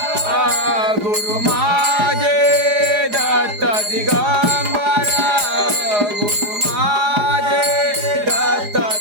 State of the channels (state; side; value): late; left; 4.8 ms